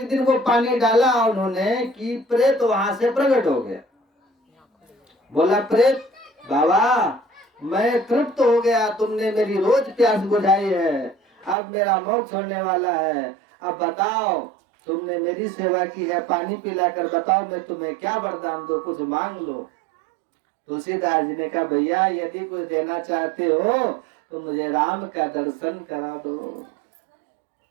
दिन वो पानी डाला उन्होंने कि प्रेत वहां से प्रकट हो गया। बोला प्रेत बाबा मैं तृप्त हो गया, तुमने मेरी रोज प्यास बुझाई है, अब मेरा मोक्ष होने वाला है। अब बताओ तुमने मेरी सेवा की है, पानी पिलाकर बताओ मैं तुम्हें क्या वरदान दो, कुछ मांग लो। तुलसीदास जी ने कहा भैया यदि कुछ देना चाहते हो तो मुझे राम का दर्शन करा दो।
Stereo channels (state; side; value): drops out; left; at 11.6 s